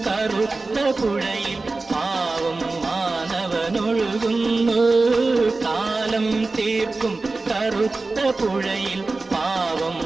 കറുത്ത പുഴയിൽ പാവം മാനവനൊഴുകുന്നു. കാലം തീർക്കും കറുത്ത പുഴയിൽ പാവം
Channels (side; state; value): left; quieter; 3.5 dB